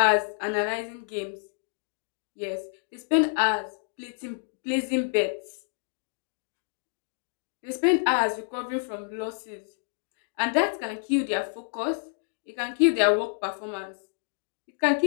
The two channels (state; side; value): silent; right; digital silence